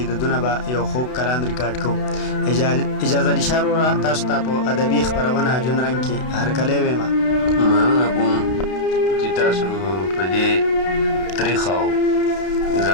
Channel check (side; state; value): right; late; 32 ms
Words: د دونه به یو خوږ کلام ریکارډ کوو. اجازه علي شاه وروره، تاسو ته په ادبي خپرونه ژوند رنګ کې هرکلی ویمه. مننه کوم چې تاسو په دې تریخ او